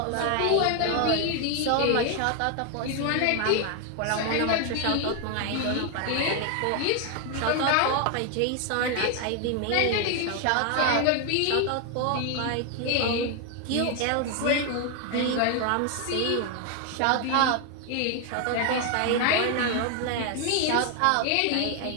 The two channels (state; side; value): different; both; correlation 0.01